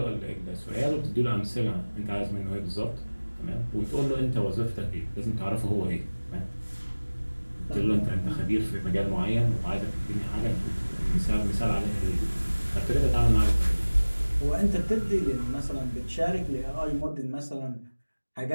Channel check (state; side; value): inverted; both; correlation -1.00